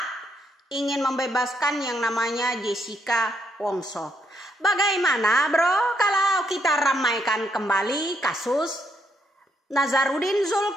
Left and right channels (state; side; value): normal; both; correlation 0.76